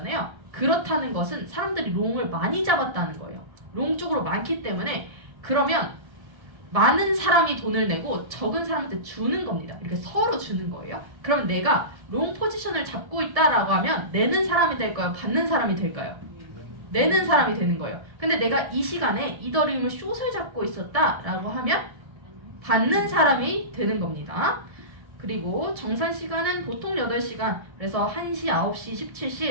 그렇다는 것은 사람들이 롱을 많이 잡았다는 거예요. 롱 쪽으로 많기 때문에 그러면 많은 사람이 돈을 내고 적은 사람한테 주는 겁니다. 이렇게 서로 주는 거예요. 그럼 내가 롱 포지션을 잡고 있다라고 하면 내는 사람이 될까요? 받는 사람이 될까요? 내는 사람이 되는 거예요. 근데 내가 이 시간에 이더리움을 숏을 잡고 있었다라고 하면 받는 사람이 되는 겁니다. 그리고 정산 시간은 보통 8시간, 그래서 1시, 9시,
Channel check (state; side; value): late; left; 1.7 ms